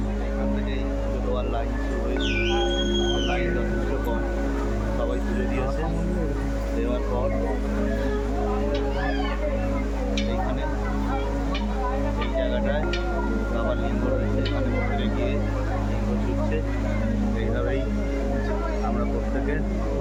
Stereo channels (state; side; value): identical; both; correlation 1.00